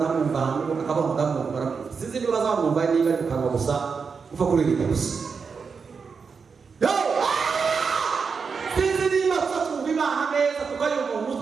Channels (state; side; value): quieter; left; 5.5 dB